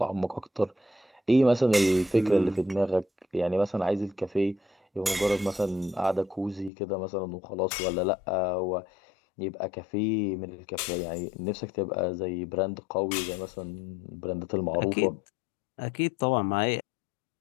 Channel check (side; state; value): right; drops out; at 6.7 s